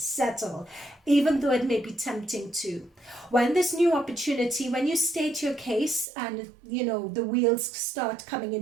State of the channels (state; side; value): drops out; left; at 6.1 s